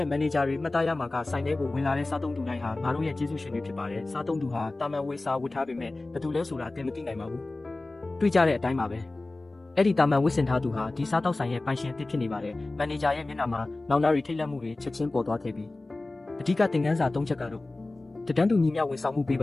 ဲ့မန်နေဂျာတွေမှတ်သားရမှာကဆိုင်ထဲကိုဝင်လာတဲ့စားသုံးသူတိုင်းဟာငါတို့ရဲ့ကျေးဇူးရှင်တွေဖြစ်ပါတယ်စားသုံးသူဟာတာမန်ဝစ်စားဝတ်ထားပေမဲ့ဘယ်သူလဲဆိုတာသင်မသိနိုင်ပါဘူးတွေ့ကြတဲ့အတိုင်းပါပဲအဲ့ဒီတာမန်ဝစ်စင်ထားသူဟာဒီစားတောက်ဆိုင်ရဲ့ပိုင်ရှင်အသစ်ဖြစ်နေပါတယ်။မန်နေဂျာရဲ့မျက်နှာမှာနောင်နာရီထိတ်လန့်မှုတွေချက်ချင်းပေါ်သွားခဲ့ပြီးအဓိကသင်ခန်းစာ၃ချက်ကတော့တဒန်းတူညီမျှဝန်ဆောင်မှုပေး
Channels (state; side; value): quieter; right; 3.0 dB